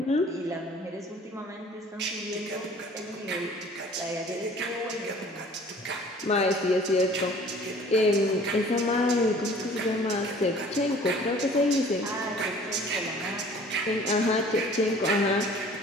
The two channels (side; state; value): both; normal; correlation 0.50